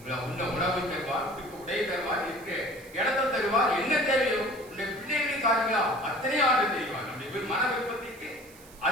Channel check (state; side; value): noise; right; hiss, 22 dB below the sound